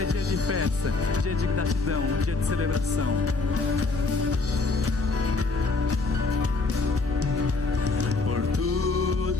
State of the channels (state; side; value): quieter; right; 3.7 dB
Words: dia de festa, dia de gratidão, dia de celebração. Por